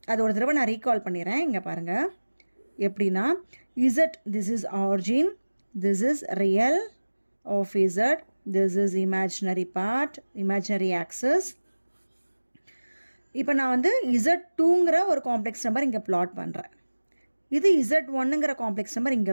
அது ஒரு தடவை நான் ரீகால் பண்ணிடுறேன். இங்கே பாருங்கள் எப்படின்னா, Z this is origin, this is real of Z, this is imaginary part, imaginary axis. இப்போ நான் வந்து Z2ங்கிற ஒரு காம்ப்ளெக்ஸ் நம்பர் இங்கே பிளாட் பண்ணுறேன். இது Z1ங்கிற காம்ப்ளெக்ஸ் நம்பர்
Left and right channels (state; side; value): inverted; both; correlation -1.00